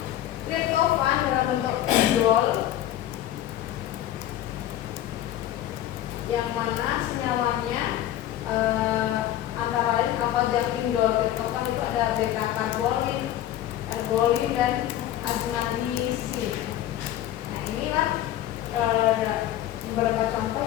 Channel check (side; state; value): right; quieter; 12.6 dB